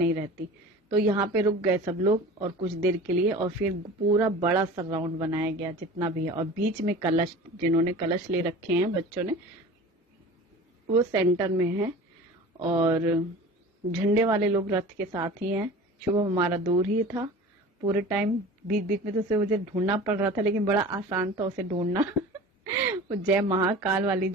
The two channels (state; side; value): normal; both; correlation 0.38